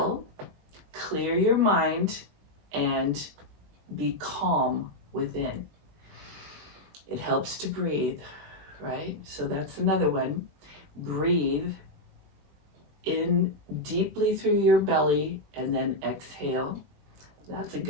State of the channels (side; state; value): left; late; 20 ms